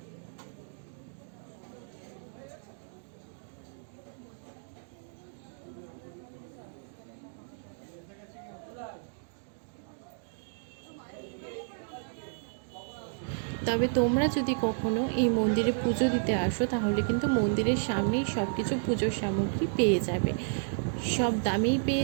তবে তোমরা যদি কখনো এই মন্দিরে পুজো দিতে আসো তাহলে কিন্তু মন্দিরের সামনেই সব কিছু পুজোর সামগ্রী পেয়ে যাবে, সব দামেই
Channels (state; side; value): silent; left; digital silence